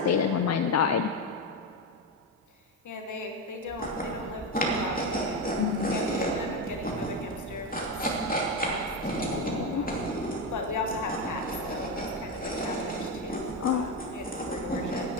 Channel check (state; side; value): normal; both; correlation 0.12